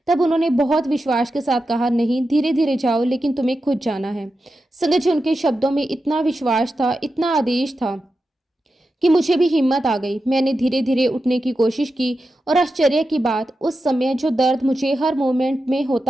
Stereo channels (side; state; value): both; normal; correlation 0.90